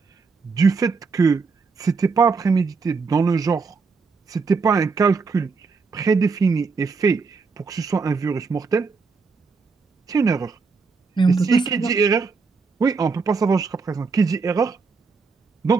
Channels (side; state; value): left; quieter; 4.7 dB